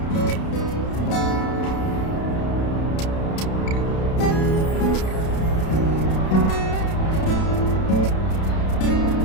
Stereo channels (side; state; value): right; late; 31 ms